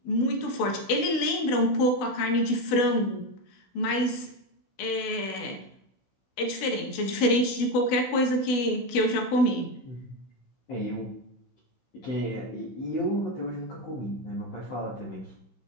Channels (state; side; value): late; right; 16 ms